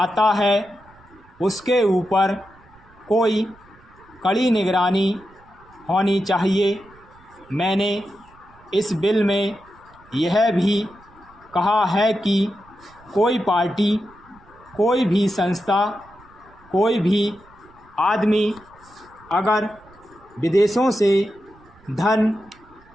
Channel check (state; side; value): noise; right; rumble, 27 dB below the sound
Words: है उसके ऊपर कोई कड़ी निगरानी होनी चाहिए। मैंने इस बिल में यह भी कहा है कि कोई पार्टी, कोई भी संस्था, कोई भी आदमी अगर विदेशों से धन